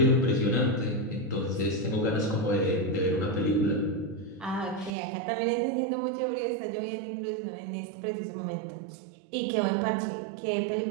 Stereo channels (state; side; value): drops out; left; at 4.9 s